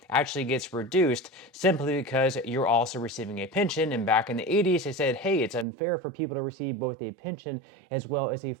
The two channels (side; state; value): left; drops out; at 5.7 s